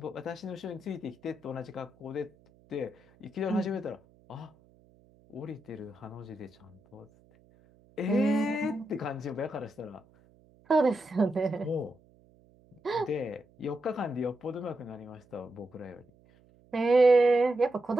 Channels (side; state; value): right; noise; hum, 29 dB below the sound